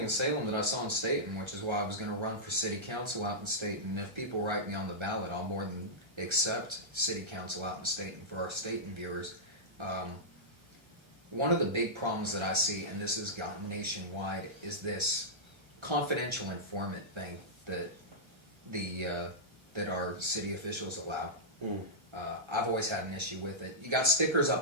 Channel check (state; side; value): late; left; 1.3 ms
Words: in Salem that I saw in Staten, which is why I was going to run for city council out in Staten. And if people write me on the ballot, I'll more than accept city council out in Staten for our Staten viewers. One of the big problems that I see, and this has gotten nationwide, is this confidential informant thing that that our city officials allow. I've always had an issue with it. You got stickers